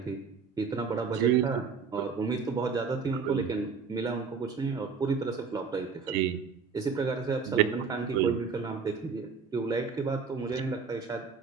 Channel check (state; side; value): quieter; left; 5.5 dB